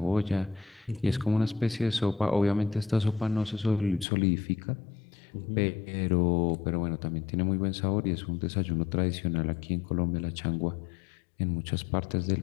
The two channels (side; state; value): right; drops out; at 4.0 s